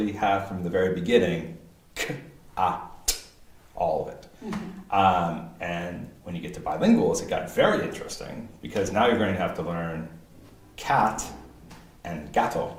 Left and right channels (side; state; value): both; identical; correlation 1.00